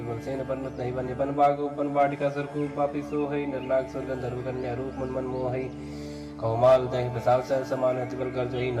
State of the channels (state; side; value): identical; both; correlation 1.00